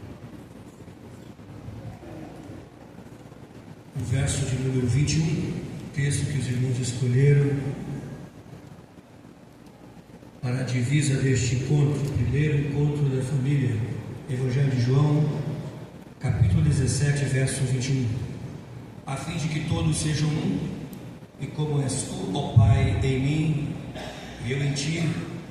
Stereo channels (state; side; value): identical; both; correlation 1.00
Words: O verso de número 21, texto que os irmãos escolheram para a divisa deste encontro, primeiro encontro da família. Evangelho de João, capítulo 17, verso 21. A fim de que todos sejam um, e como és tu, ó Pai, em mim, e eu em ti,